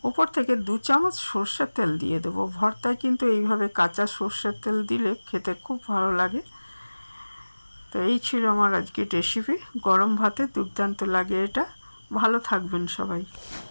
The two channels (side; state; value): both; inverted; correlation -1.00